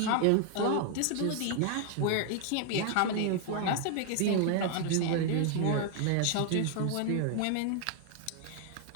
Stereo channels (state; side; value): different; both; correlation 0.00